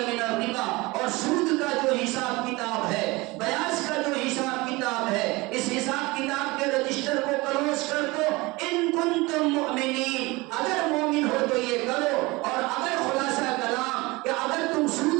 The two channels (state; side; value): quieter; left; 23.0 dB